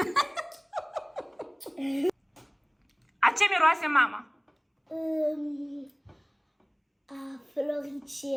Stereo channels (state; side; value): identical; both; correlation 1.00